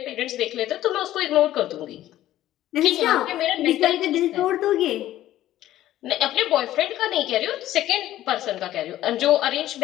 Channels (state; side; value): quieter; right; 13.8 dB